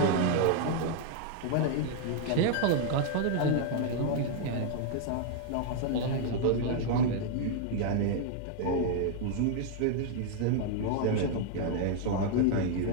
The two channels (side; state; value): both; different; correlation 0.00